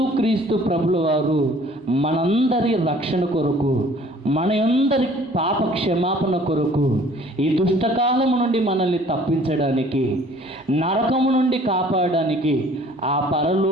ప్రభుల వారు మనందరి రక్షణ కొరకు, మనందరి పాప క్షమాపణ కొరకు, ఈ దుష్టకాలము నుండి మనల్ని తప్పించడానికి, నరకము నుండి కాపాడడానికి, ఆ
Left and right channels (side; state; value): both; normal; correlation 0.54